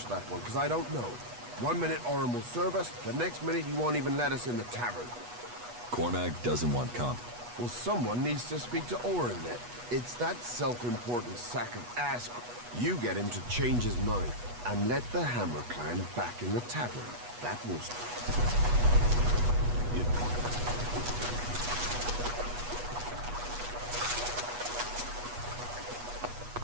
that one, because I don't know. 1 minute Orin will serve us, the next minute he won't even let us in the tavern. Cormac doesn't want comp. Well, someone needs to speak to Orin then. It's that self-important sack of ass. You get him to change his mind, and let the Hammer Clan back in the tavern. That will...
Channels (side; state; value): left; late; 8.3 ms